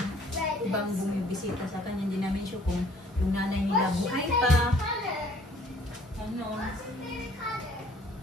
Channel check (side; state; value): both; normal; correlation 0.57